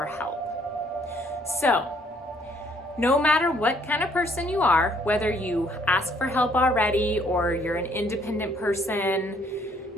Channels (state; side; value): normal; both; correlation 0.65